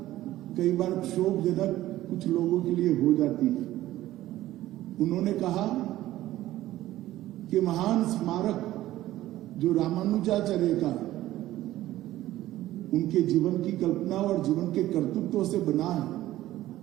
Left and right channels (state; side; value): quieter; left; 14.9 dB